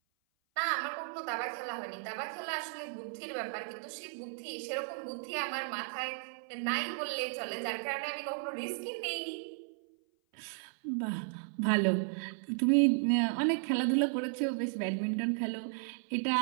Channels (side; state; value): left; silent; 55 dB below the other